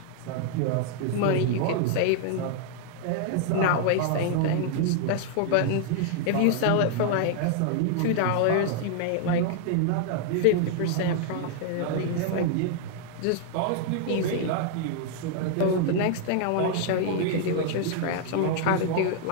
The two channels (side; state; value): both; different; correlation 0.00